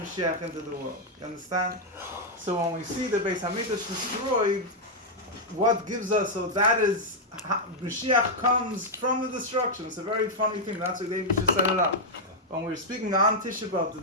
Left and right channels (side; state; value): both; normal; correlation -0.03